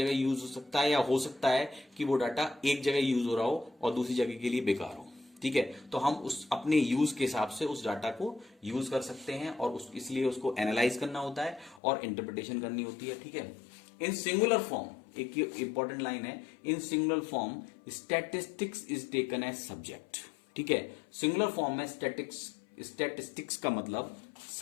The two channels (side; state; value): right; drops out; at 11.8 s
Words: यूज हो सकता है, या हो सकता है कि वो डाटा एक जगह यूज हो रहा हो और दूसरी जगह के लिए बेकार हो, ठीक है। तो हम उस अपने यूज के हिसाब से उस डाटा को यूज कर सकते हैं, और इसलिए उसको एनालाइज करना होता है और इंटरप्रिटेशन करनी होती है, ठीक है। इन सिंगुलर फॉर्म, एक इंपॉर्टेंट लाइन है, in singular form statistics is taken as subject, ठीक है। सिंगुलर फॉर्म में स्टैटिस्टिक्स का मतलब